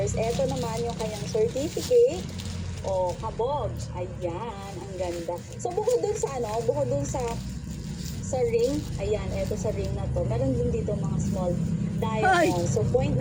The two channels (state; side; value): identical; both; correlation 1.00